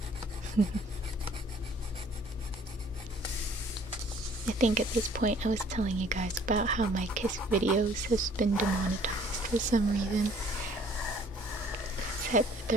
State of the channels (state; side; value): normal; both; correlation 0.57